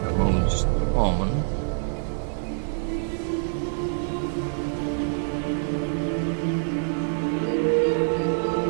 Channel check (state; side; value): silent; left; digital silence